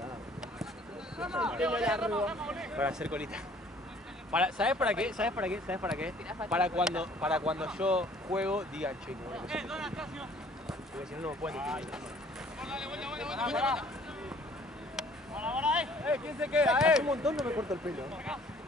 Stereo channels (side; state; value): both; normal; correlation 0.56